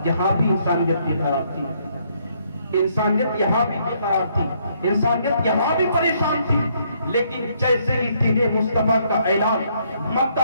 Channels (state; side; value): inverted; both; correlation -0.70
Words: یہاں بھی انسانیت بے قرار تھی, انسانیت یہاں بھی بے قرار تھی, انسانیت یہاں بھی پریشان تھی. لیکن جیسے ہی دین مصطفیٰ کا اعلان مکہ